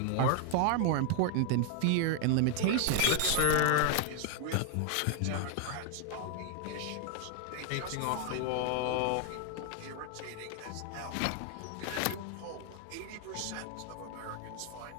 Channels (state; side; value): different; both; correlation 0.00